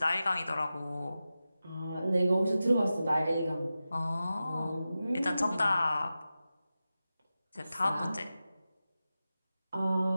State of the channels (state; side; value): inverted; both; correlation -0.93